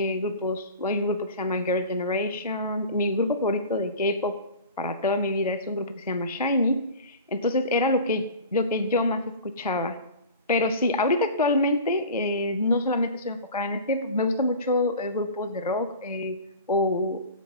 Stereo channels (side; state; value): both; inverted; correlation -0.37